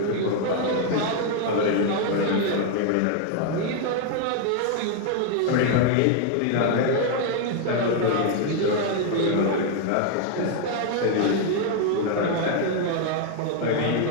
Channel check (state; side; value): different; both; correlation 0.00